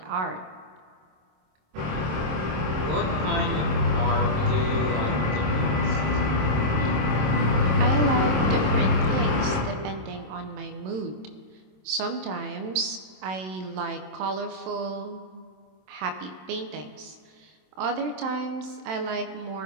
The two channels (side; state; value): left; late; 27 ms